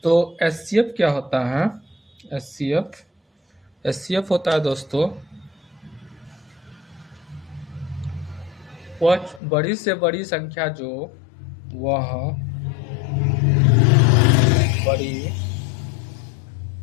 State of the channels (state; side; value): drops out; right; at 9.4 s